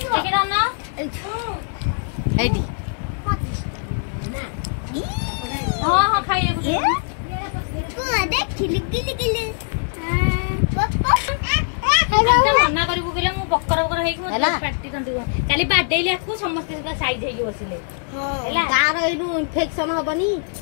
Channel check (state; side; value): silent; right; digital silence